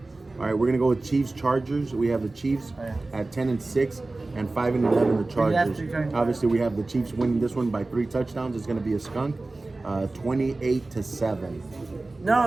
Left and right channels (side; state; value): left; quieter; 3.2 dB